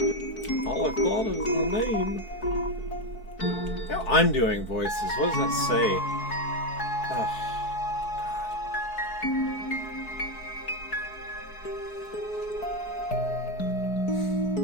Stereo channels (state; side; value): late; right; 4.6 ms